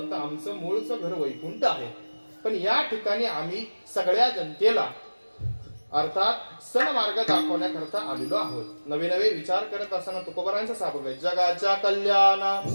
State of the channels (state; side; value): inverted; both; correlation -1.00